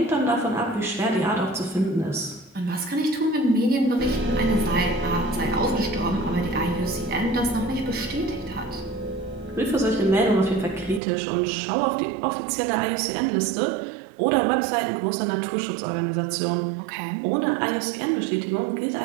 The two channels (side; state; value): left; drops out; at 11.0 s